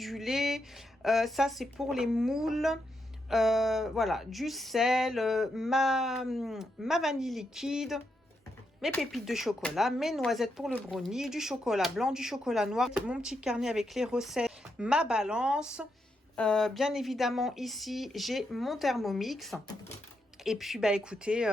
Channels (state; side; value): normal; both; correlation 0.82